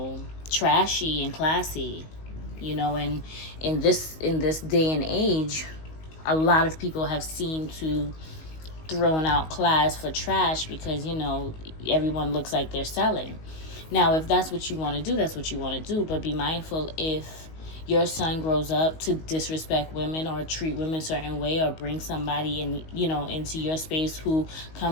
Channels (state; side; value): late; right; 19 ms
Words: trashy and classy. You know, and in this day and age, a lot of people have seemed to throwing out class for trash because, you know, everyone looks like they're selling. Now, if that's what you want to do, that's what you want to do. But be mindful, if your son grows up to disrespect women or treat women a certain way, or bring somebody in, you know, into your space who